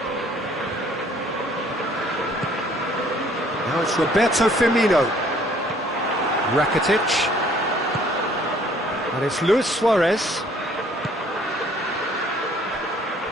Now it's Roberto Firmino. Rakitic. And it's Luis Suarez.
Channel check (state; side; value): normal; both; correlation 0.58